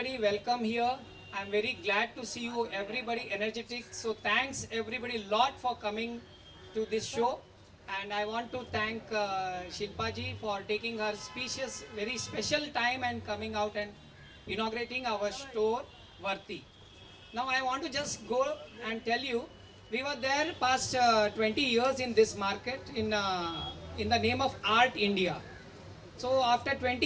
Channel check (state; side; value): identical; both; correlation 1.00